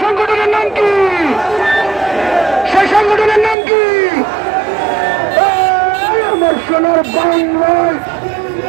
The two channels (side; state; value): left; drops out; at 3.6 s